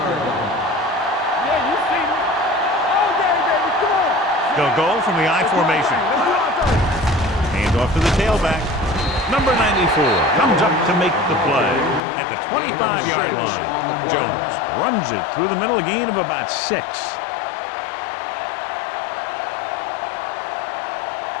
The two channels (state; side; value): drops out; right; at 12.0 s